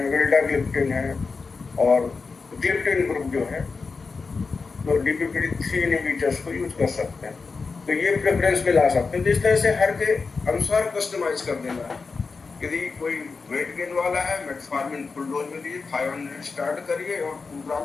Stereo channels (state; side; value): quieter; right; 4.5 dB